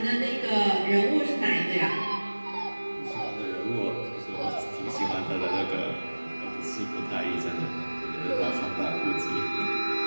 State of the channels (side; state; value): both; inverted; correlation -1.00